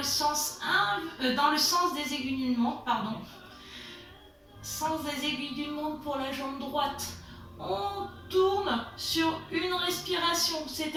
sens des aiguilles d'une montre, pardon. Sens des aiguilles d'une montre pour la jambe droite. On tourne sur une respiration,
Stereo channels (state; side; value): identical; both; correlation 1.00